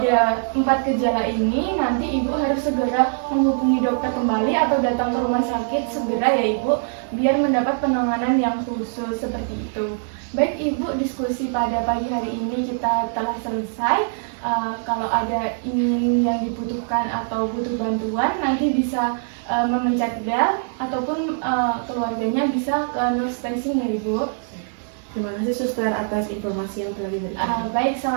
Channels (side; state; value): left; silent; 64 dB below the other